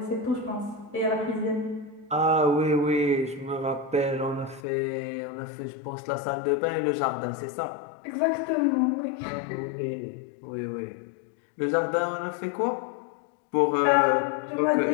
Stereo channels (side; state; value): right; drops out; at 4.6 s